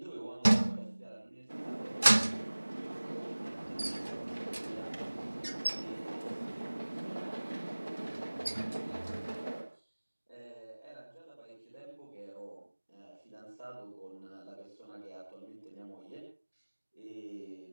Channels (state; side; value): inverted; both; correlation -1.00